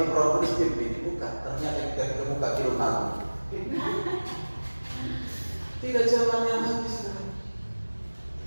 Roh Kudus dibuka, ternyata kita kebuka kirim aku. Tidak zamannya lagi sekarang.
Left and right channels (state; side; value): inverted; both; correlation -1.00